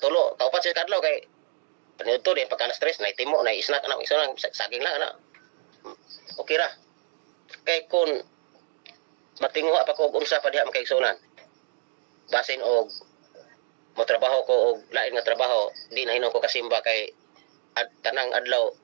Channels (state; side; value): silent; left; digital silence